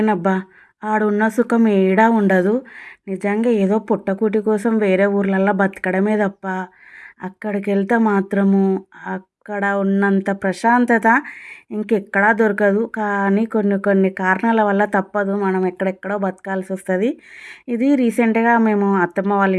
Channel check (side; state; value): both; identical; correlation 1.00